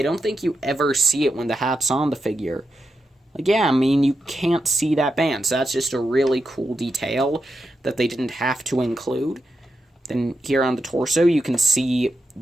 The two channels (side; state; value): both; normal; correlation 0.87